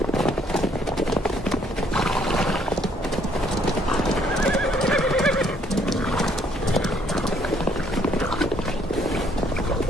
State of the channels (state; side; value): normal; both; correlation 0.66